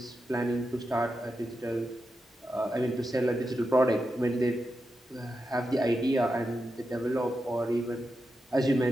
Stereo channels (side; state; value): both; normal; correlation 0.88